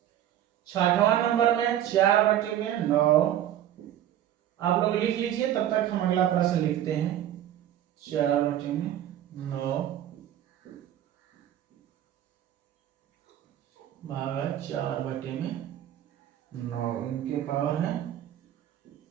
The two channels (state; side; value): quieter; left; 11.6 dB